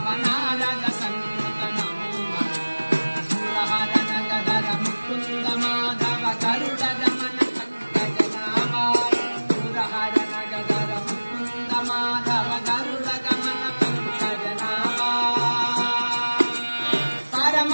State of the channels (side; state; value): both; inverted; correlation -1.00